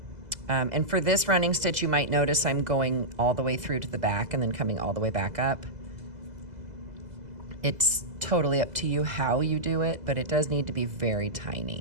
And for this running stitch, you might notice I'm going all the way through to the back and then coming all the way back up. It's totally up to you how you do it, but it does need to be very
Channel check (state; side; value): late; left; 2.0 ms